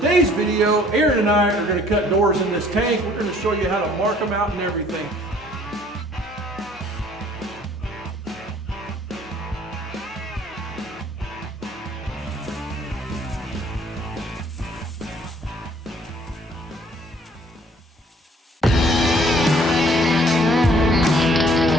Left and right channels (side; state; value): both; normal; correlation 0.58